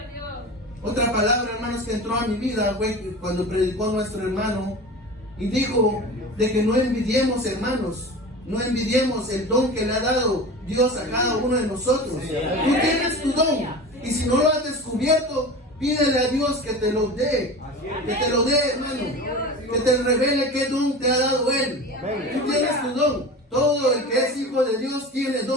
Otra palabra, hermanos, que entró a mi vida fue cuando predicó nuestro hermano y dijo de que no envidiemos, hermanos, no envidiemos el don que le ha dado Dios a cada uno de nosotros. Tú tienes tu don y si no lo has descubierto, pídele a Dios que te lo dé, hermano, que te revele qué don te ha dado Él. Tú tienes tu don. Todo el que es hijo de Dios tiene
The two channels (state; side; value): normal; both; correlation 0.33